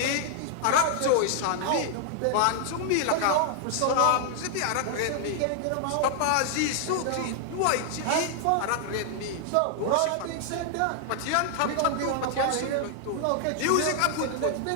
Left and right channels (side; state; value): both; different; correlation 0.00